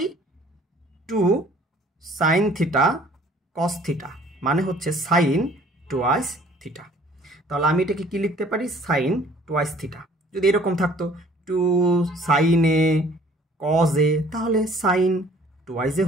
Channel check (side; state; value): both; normal; correlation 0.54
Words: 2 সাইন থিটা কস থিটা মানে হচ্ছে সাইন টুয়াইস থিটা। তাহলে আমি এটাকে কি লিখতে পারি? Sine twice theta. যদি এরকম থাকতো 2 সাইনে কজে, তাহলে সাইন টুয়াইসে